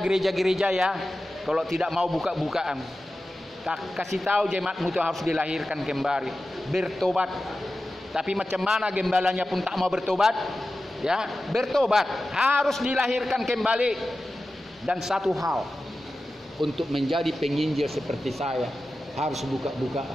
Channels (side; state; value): both; normal; correlation 0.94